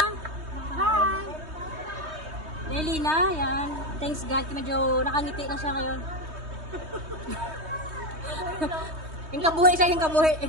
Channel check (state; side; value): late; left; 3.2 ms